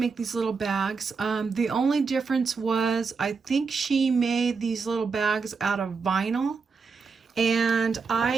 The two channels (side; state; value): left; quieter; 5.0 dB